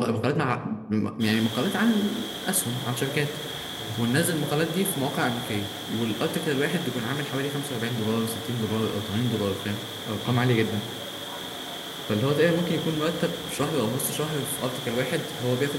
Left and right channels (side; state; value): both; identical; correlation 1.00